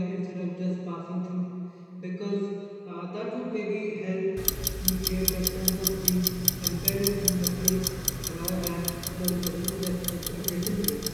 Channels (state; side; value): identical; both; correlation 1.00